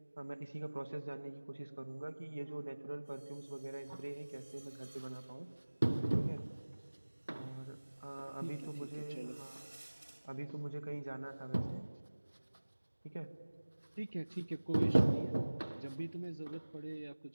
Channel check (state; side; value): inverted; both; correlation -1.00